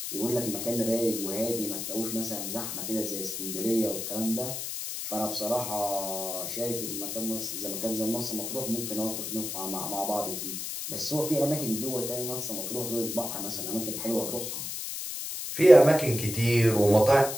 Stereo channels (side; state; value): left; noise; hiss, 5 dB below the sound